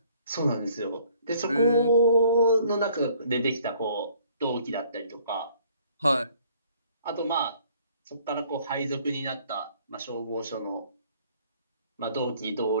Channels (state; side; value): inverted; both; correlation -0.59